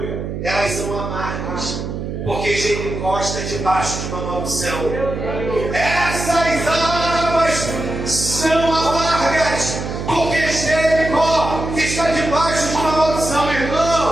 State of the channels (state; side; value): noise; right; hum, 5 dB below the sound